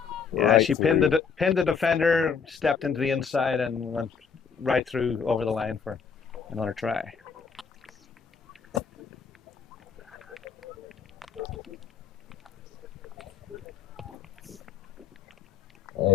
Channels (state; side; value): quieter; right; 6.3 dB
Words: Yeah, she pinned the defender, stepped into the inside, and went right through over the line for another try.